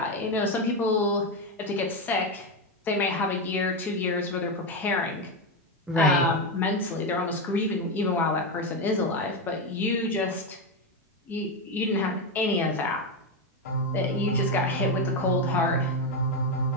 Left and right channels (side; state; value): both; normal; correlation 0.10